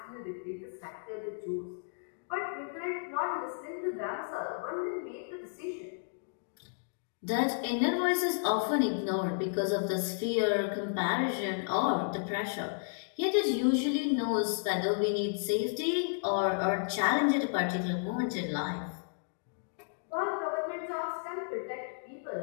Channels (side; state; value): right; silent; digital silence